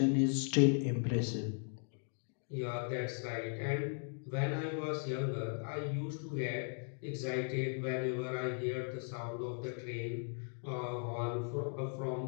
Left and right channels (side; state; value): right; silent; 53 dB below the other